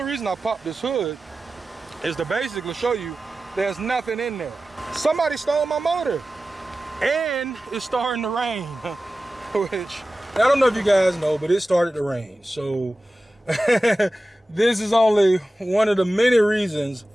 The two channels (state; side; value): normal; both; correlation 0.95